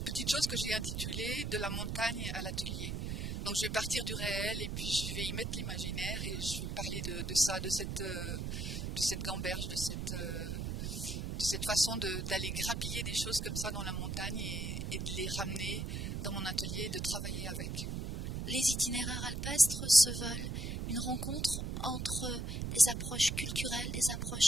petite chose que j'ai intitulée « De la montagne à l'atelier ». Donc je vais partir du réel et puis je vais y mettre l'imaginaire, et je vais parler de ça, de cette gamberge, de cette façon d'aller grappiller des choses comme ça dans la montagne et de les ramener dans mon atelier et de travailler avec. Les itinéraires alpestres se veulent une rencontre entre des approches culturelles, des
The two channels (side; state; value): right; noise; rumble, 3 dB below the sound